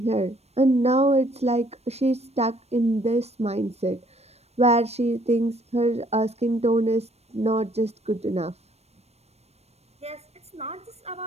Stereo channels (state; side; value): late; left; 0.31 ms